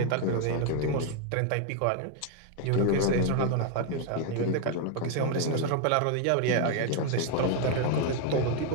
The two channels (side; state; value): both; different; correlation 0.00